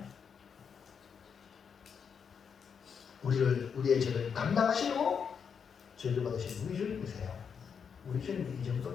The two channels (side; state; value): right; quieter; 6.7 dB